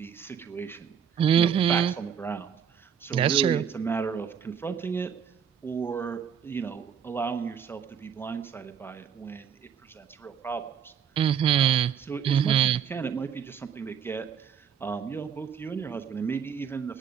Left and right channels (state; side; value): quieter; left; 7.8 dB